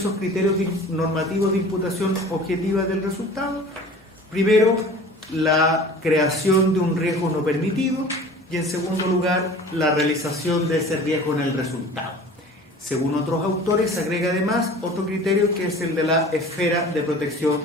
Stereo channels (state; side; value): normal; both; correlation 0.43